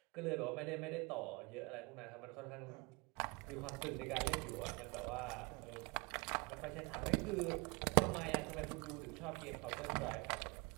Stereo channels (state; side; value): quieter; left; 28.1 dB